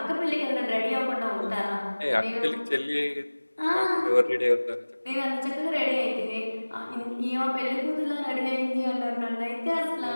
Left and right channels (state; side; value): inverted; both; correlation -1.00